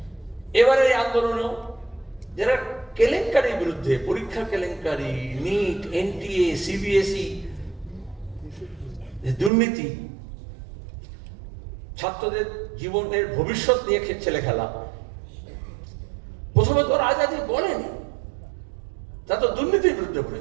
এবারে এই আন্দোলনও যারা কেলেঙ্কারির বিরুদ্ধে, পরীক্ষা কেলেঙ্কারি, নিট, এনটিএ, সিবিএসই, দুর্নীতি, ছাত্রদের জীবনের ভবিষ্যৎ নিয়ে ছেলে খেলা, প্রথমে তো আজাদি বলেনি, তা তো দুর্নীতির বিরুদ্ধে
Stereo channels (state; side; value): drops out; left; at 9.5 s